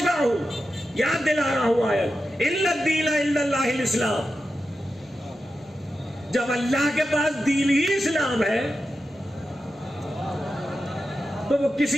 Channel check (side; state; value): both; normal; correlation 0.90